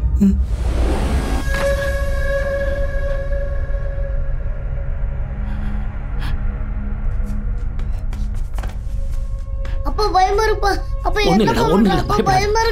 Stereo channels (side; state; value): both; identical; correlation 1.00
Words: அப்பா பயமா இருப்பா. அப்பா என்ன பயமா